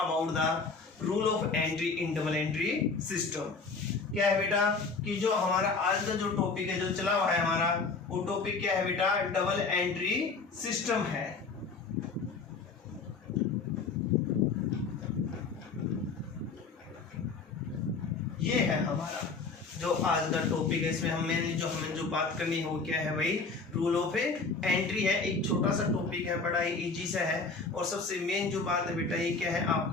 the rule of entry in double entry system. क्या है बेटा कि जो हमारा आज का जो टॉपिक है जो चला हुआ है हमारा वो टॉपिक क्या है बेटा डबल एंट्री सिस्टम है। ये है हमारा जो आज का टॉपिक है। इसमें हमें जो बात करनी है वो क्या है भाई रूल ऑफ एंट्री है। एक छोटा सा टॉपिक है, बड़ा ही इजी सा है और सबसे मेन जो बात है बेटा ये क्या है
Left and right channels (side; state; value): right; quieter; 4.4 dB